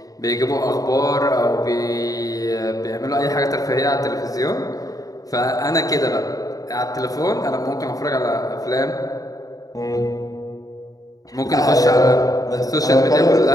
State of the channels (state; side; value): late; right; 0.17 ms